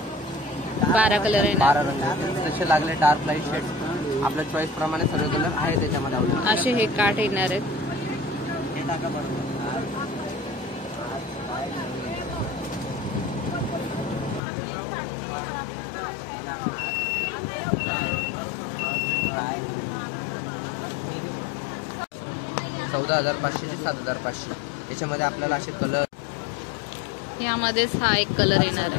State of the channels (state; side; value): drops out; right; at 14.4 s